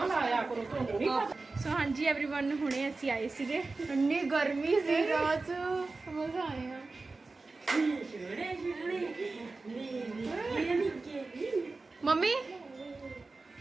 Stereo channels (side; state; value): left; quieter; 3.6 dB